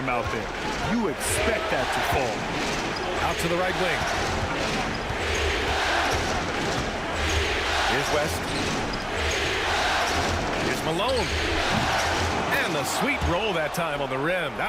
out there. You expect that to fall. Out to the right wing. Here's West. Here's Malone. And And the sweet roll that time on the rim.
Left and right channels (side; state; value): both; identical; correlation 1.00